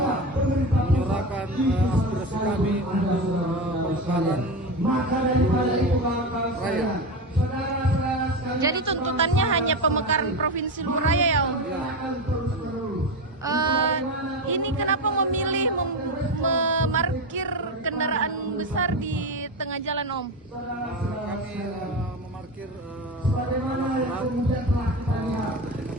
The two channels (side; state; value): both; normal; correlation 0.19